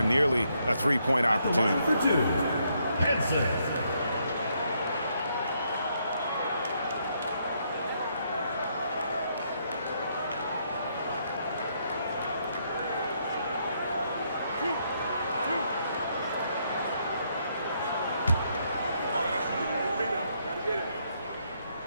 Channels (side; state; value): both; inverted; correlation -0.74